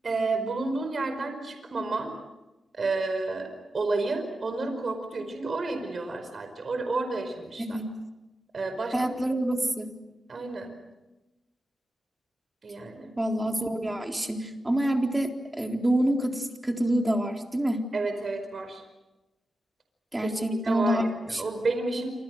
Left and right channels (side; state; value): both; normal; correlation 0.90